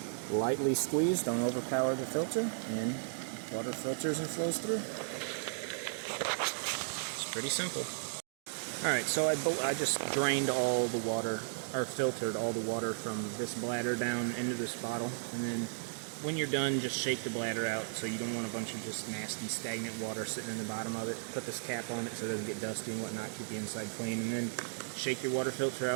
lightly squeeze, don't overpower the filter, and water filters and flows through. It's pretty simple. Alright, so I just drained all the water, or filtered all the water from this bladder down into this bottle, and then when you're done, just shake the bladder out, so you don't want a bunch of just nasty, stagnant water sitting in the bottom of it. Put this cap on it so it doesn't get dusty and whatnot, keep the inside clean, and then shake your water filter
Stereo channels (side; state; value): left; silent; digital silence